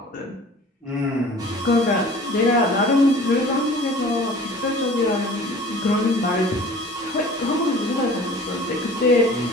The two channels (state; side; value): normal; both; correlation 0.45